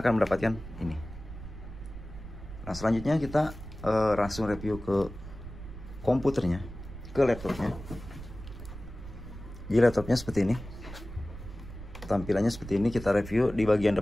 mendapatkan ini. Nah, selanjutnya kita langsung review ke komputernya, ke laptopnya. Jadi laptopnya seperti ini, tampilannya seperti ini. Kita review di bagian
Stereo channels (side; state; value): right; noise; rumble, 12 dB below the sound